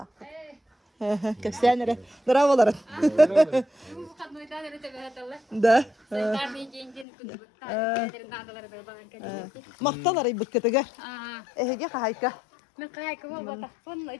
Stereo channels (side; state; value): right; drops out; at 7.1 s